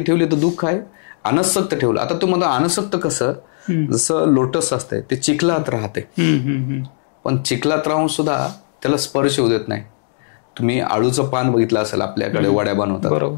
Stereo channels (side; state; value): right; silent; digital silence